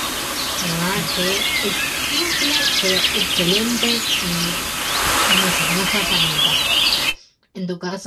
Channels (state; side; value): identical; both; correlation 1.00